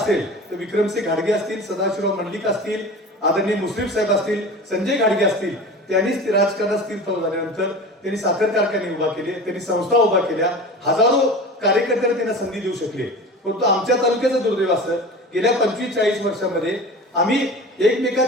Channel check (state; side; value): normal; both; correlation 0.35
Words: तर विक्रमसिंह घाडगे असतील सदाशिवराव मंडलिक असतील आदरणीय मुश्रीफ साहेब असतील संजय घाडगे असतील त्यांनीच राजकारणात स्थिरतावर झाल्यानंतर त्यांनी साखर कारखाने उभा केले त्यांनी संस्था उभा केल्या हजारो कार्यकर्त्यांना त्यांना संधी देऊ शकले. परंतु आमच्या तालुक्याचं दुर्दैव असं गेल्या 25-40 वर्षांमध्ये आम्ही